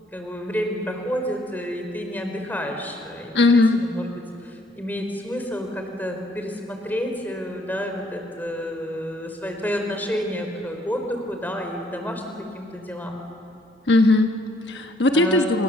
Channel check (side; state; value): both; normal; correlation 0.65